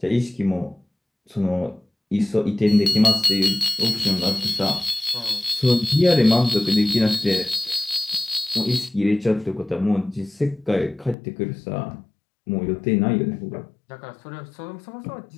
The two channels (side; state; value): right; drops out; at 11.2 s